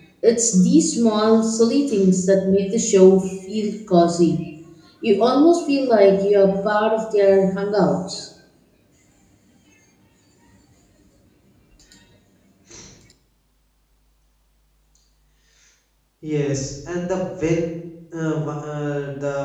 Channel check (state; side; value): identical; both; correlation 1.00